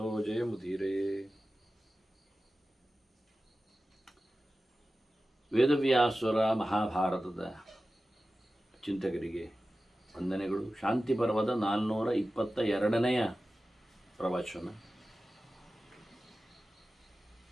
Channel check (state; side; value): normal; both; correlation 0.95